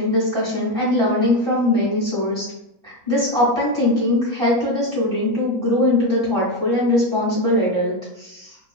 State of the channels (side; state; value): both; normal; correlation 0.12